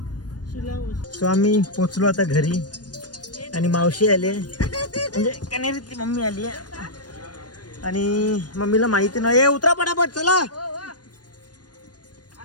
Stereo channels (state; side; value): late; right; 0.69 ms